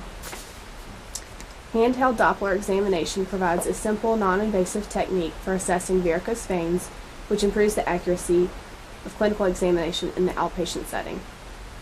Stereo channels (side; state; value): both; identical; correlation 1.00